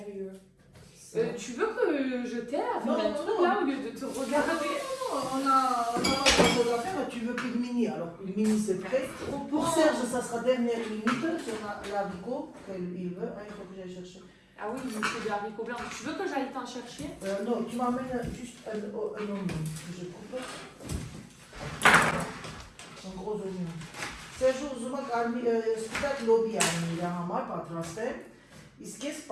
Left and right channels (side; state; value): both; identical; correlation 1.00